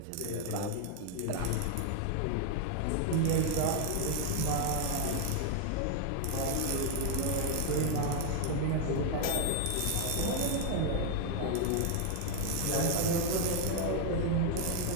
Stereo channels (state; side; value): different; both; correlation 0.00